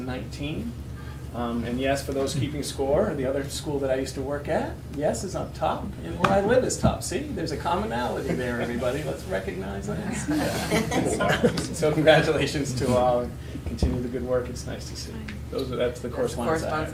And yes, for those keeping score, the other school that I used to work at, yes, is up top, and where I live is top. See, there's a commonality there, everybody. Let's recognize that. So congratulations to all, and continue the good work. It's nice to see. That's the correspondence.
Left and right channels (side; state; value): both; identical; correlation 1.00